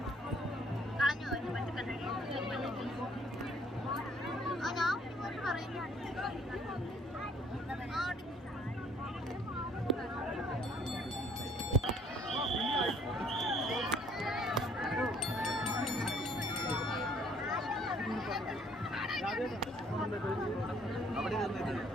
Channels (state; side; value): normal; both; correlation 0.61